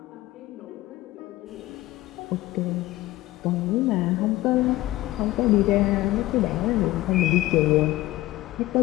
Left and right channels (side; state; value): right; quieter; 17.1 dB